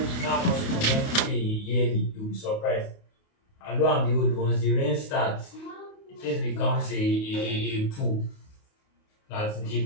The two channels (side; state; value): right; late; 28 ms